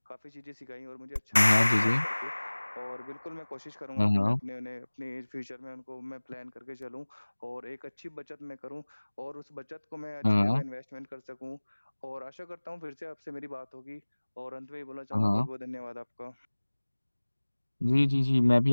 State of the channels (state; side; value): inverted; both; correlation -1.00